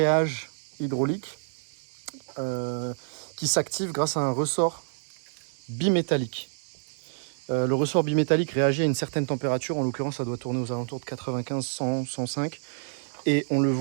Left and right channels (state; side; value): silent; left; 59 dB below the other